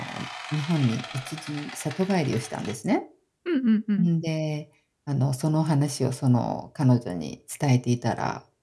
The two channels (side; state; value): both; identical; correlation 1.00